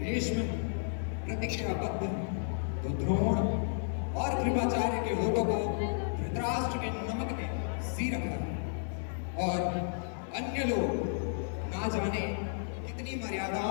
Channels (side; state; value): right; silent; digital silence